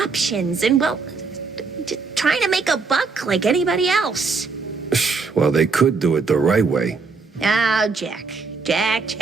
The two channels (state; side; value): quieter; left; 4.5 dB